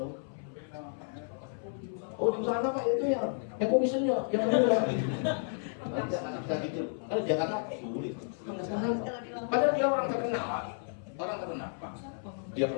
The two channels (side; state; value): right; silent; 56 dB below the other